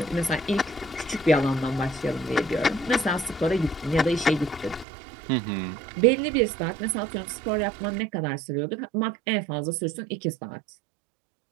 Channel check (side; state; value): left; drops out; at 4.9 s